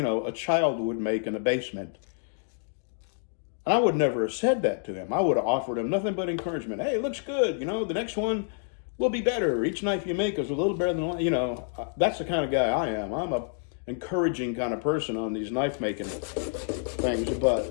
child would make in a basement. And I would never have said that to him. I would have offered him nothing but encouragement. Hey, it looks good. The next one, will be better. Each knife you make is a little better than, you know, that's the kind of guy I am. I'm a encouraging kind of person on these knife making things, but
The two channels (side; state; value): right; silent; digital silence